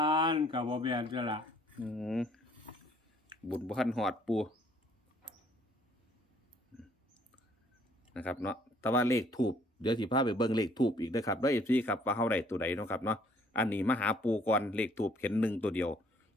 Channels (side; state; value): both; normal; correlation 0.62